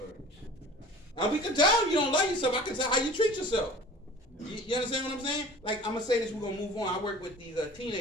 And we can tell you don't love yourself. I can tell how you treat yourself. You understand what I'm saying? Like, I'm going to say this, we're going to move on. I work with these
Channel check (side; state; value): both; normal; correlation 0.43